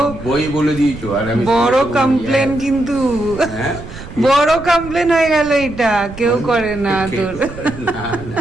বই বলে দিয়েছো। আর আমি বড় কমপ্লেন, কিন্তু বড় কমপ্লেন হয়ে গেল। এটা কেউ করে না, তোর না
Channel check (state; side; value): noise; right; rumble, 14 dB below the sound